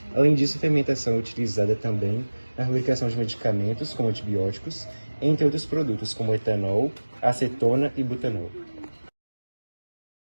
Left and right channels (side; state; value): both; inverted; correlation -1.00